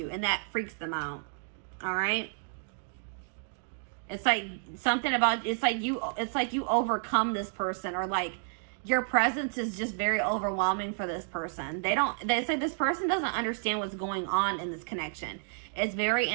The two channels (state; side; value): silent; left; digital silence